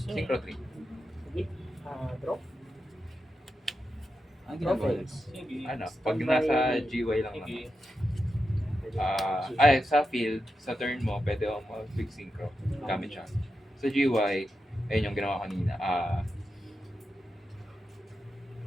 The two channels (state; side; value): normal; both; correlation 0.88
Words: Synchro 3. Sige. Draw. Ano Draw ginagawa phase. Sige. Ano, pag Standby. nasa GY lang Sige. naman. Ay, sa field, sa turn mo, pwede ako mag-quick synchro. Gamit siya. Sa GY, ayun yung ginawa kanina.